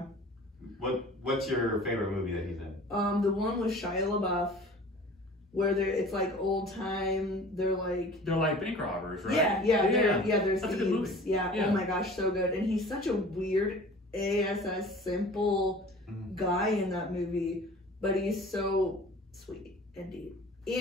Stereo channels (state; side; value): normal; both; correlation 0.44